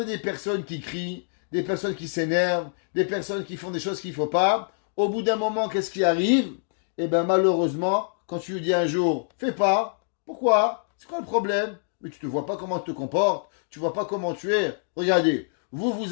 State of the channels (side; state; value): right; silent; digital silence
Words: des personnes qui crient, des personnes qui s'énervent, des personnes qui font des choses qu'il ne faut pas. Au bout d'un moment, qu'est-ce qui arrive? Eh bien, malheureusement, quand tu lui dis un jour, fais pas. Pourquoi? C'est quoi le problème? Mais tu ne vois pas comment tu te comportes. Tu ne vois pas comment tu es. Regardez,